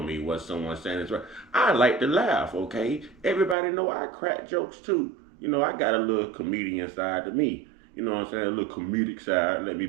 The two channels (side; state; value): left; drops out; at 3.6 s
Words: me what someone's saying is right. I like to laugh, okay? Everybody know I crack jokes too. I got a little comedian side to me. You know what I'm saying? A little comedic side. Let me